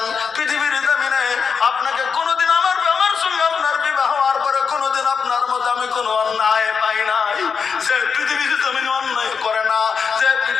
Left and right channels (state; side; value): quieter; right; 5.9 dB